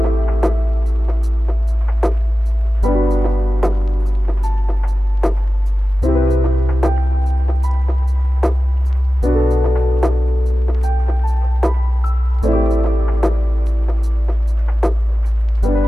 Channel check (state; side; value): normal; both; correlation 0.95